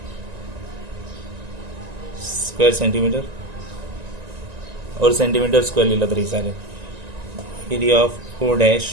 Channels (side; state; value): left; late; 1.9 ms